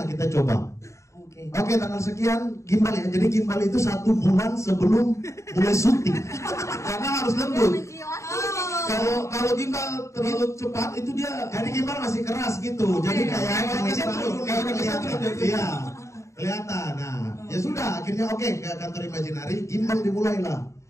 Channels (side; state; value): right; late; 0.14 ms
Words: kita coba. Oke, tanggal sekian gimbal ya. Jadi gimbal itu 1 bulan sebelum mulai syuting. Karena harus lembut. Kalau gimbal terlalu cepat itu dia. Jadi gimbal masih keras gitu. Jadi kayak iya kelihatan. Nah ya sudah akhirnya ke kantor Imaginary, gimbal dimulailah.